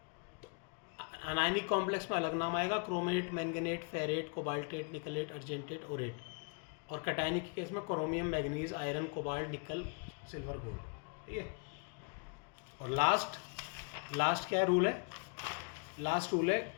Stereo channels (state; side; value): quieter; right; 37.4 dB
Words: अनायनिक कॉम्प्लेक्स में अलग नाम आएगा, chromate, manganate, ferrate, cobaltate, nickelate, argentate, aurate. और कैटायनिक के केस में chromium, manganese, iron, cobalt, nickel, silver, gold, ठीक है। और लास्ट क्या रूल है? लास्ट रूल है